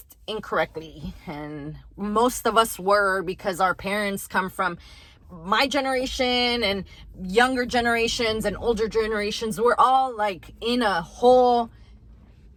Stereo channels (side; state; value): both; identical; correlation 1.00